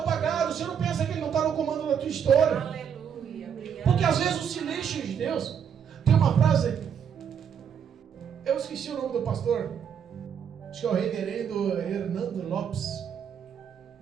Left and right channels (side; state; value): left; quieter; 7.9 dB